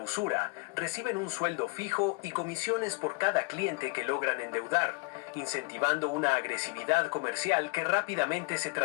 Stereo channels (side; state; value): right; quieter; 28.2 dB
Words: reciben un sueldo fijo y comisiones por cada cliente que logran endeudar, incentivando una agresividad comercial que rápidamente se